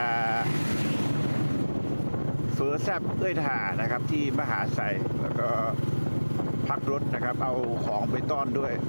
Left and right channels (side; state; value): both; inverted; correlation -1.00